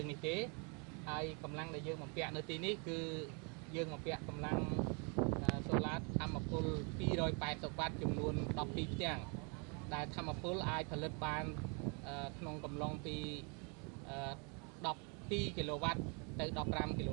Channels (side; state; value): left; quieter; 34.9 dB